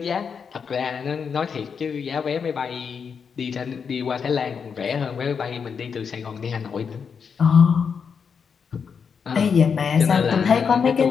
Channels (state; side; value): quieter; right; 6.3 dB